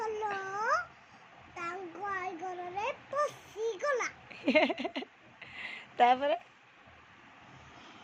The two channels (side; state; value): both; identical; correlation 1.00